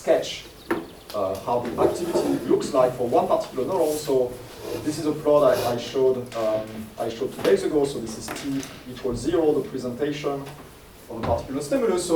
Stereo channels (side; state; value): both; identical; correlation 1.00